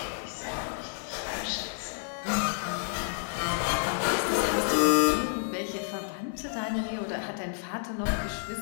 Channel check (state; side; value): silent; right; digital silence